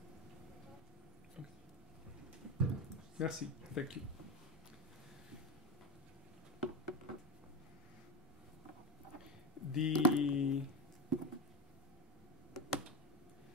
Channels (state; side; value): normal; both; correlation 0.18